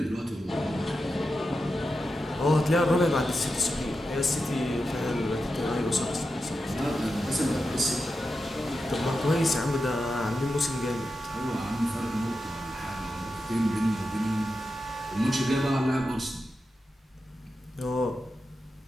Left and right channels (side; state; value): both; normal; correlation 0.90